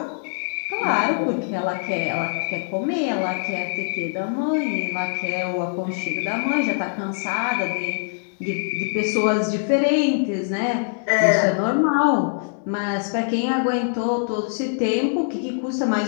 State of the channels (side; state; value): right; silent; digital silence